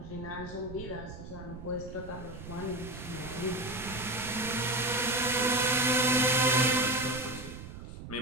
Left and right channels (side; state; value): right; noise; rumble, 12 dB below the sound